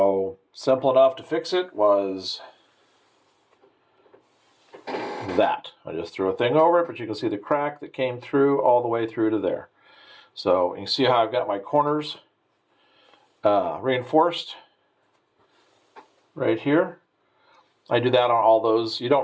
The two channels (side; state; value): both; identical; correlation 1.00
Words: simple enough to fix it was that. I just threw a thing over it, but you can see the crack that came through all the way through to there. So you can see how I've got my corners reinforced right here. I do that on all those. You